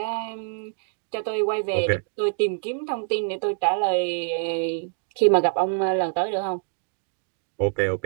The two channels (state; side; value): silent; left; digital silence